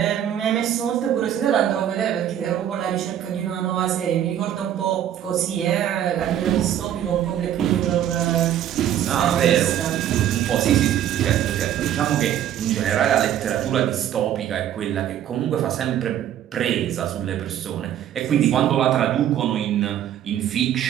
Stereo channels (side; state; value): left; quieter; 10.8 dB